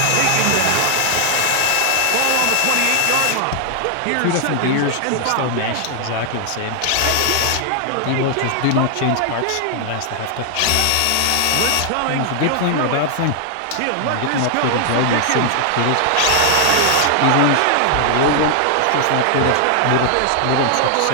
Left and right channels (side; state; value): both; different; correlation 0.00